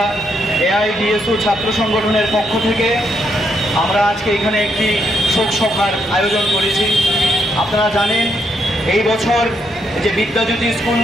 এআইডিএসও ছাত্র সংগঠনের পক্ষ থেকে আমরা আজকে এখানে একটি শোক সভার আয়োজন করেছি। আপনারা জানেন এই বছর যে বিদ্যাজ্যোতি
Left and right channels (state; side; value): normal; both; correlation 0.77